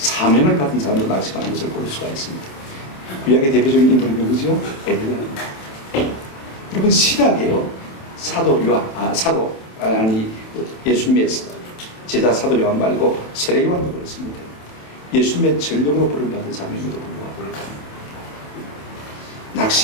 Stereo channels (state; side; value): late; right; 27 ms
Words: 받은 사람도 낙심하는 것을 볼 수가 있습니다. 구약의 대표적인 인물이 누구죠? 엘리야입니다. 여러분 신약에요 예수님의 제자 사도 요한 말고 세례 요한도 그렇습니다. 예수님의 전력으로 부름받은 사람임에도 불구하고